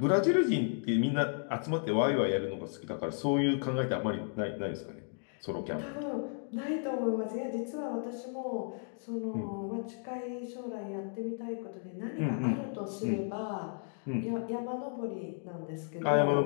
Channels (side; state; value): right; silent; 55 dB below the other